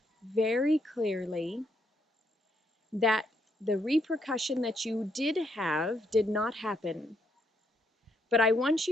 very clearly that the repercussion that you did have did not happen. But I want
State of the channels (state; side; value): normal; both; correlation 0.74